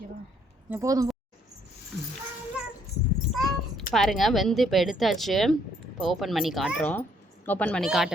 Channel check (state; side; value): normal; both; correlation 0.67